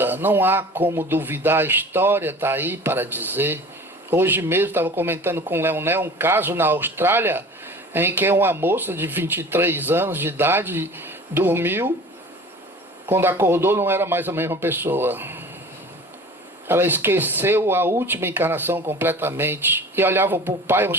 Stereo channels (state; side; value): normal; both; correlation 0.41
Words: não há como duvidar, a história está aí para dizer. Hoje mesmo estava comentando com o Leonel um caso na Austrália, em que uma moça de 23 anos de idade dormiu, quando acordou não era mais a mesma pessoa. Ela esqueceu a última encarnação completamente. E olhava para o pai,